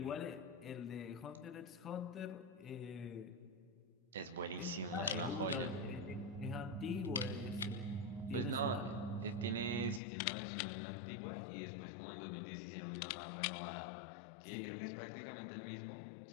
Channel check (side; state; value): right; drops out; at 10.0 s